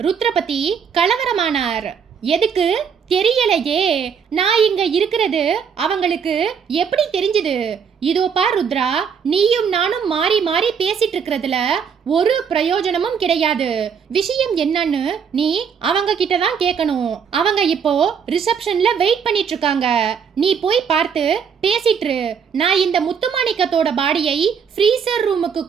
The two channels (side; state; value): left; quieter; 6.9 dB